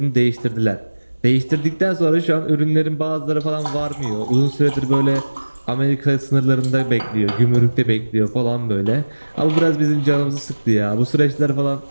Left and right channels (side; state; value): both; inverted; correlation -1.00